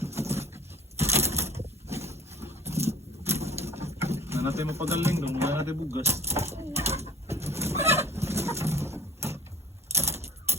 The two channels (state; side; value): normal; both; correlation 0.49